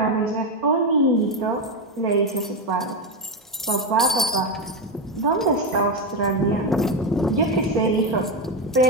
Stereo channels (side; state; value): both; normal; correlation 0.10